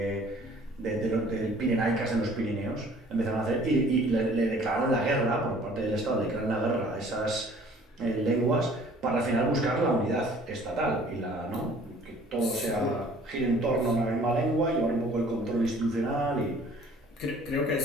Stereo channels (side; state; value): both; normal; correlation 0.53